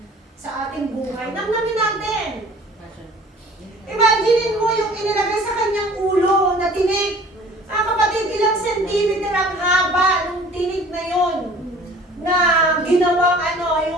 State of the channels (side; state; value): both; normal; correlation 0.49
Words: sa ating buhay. Namnamin natin. Imaginin mo yung inilagay sa kanyang ulo na tinik. Mga kapatid, ilang centimeter ang haba ng tinik na yon na ginawang